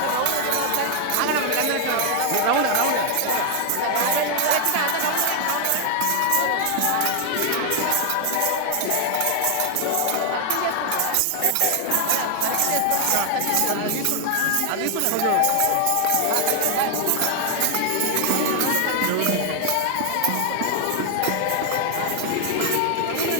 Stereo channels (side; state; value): both; different; correlation 0.00